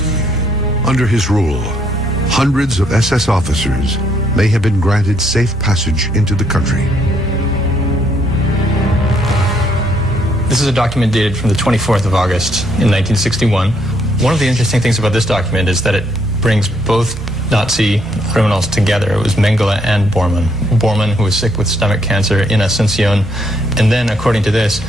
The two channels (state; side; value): normal; both; correlation 0.71